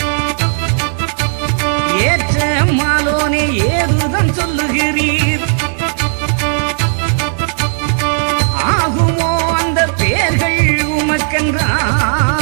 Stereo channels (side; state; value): left; silent; digital silence